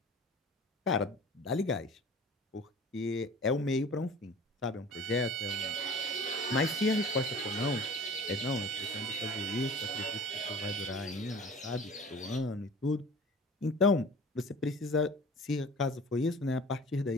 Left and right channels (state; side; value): normal; both; correlation 0.43